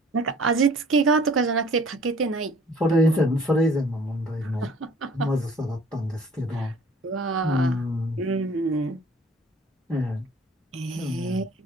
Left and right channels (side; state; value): both; normal; correlation 0.52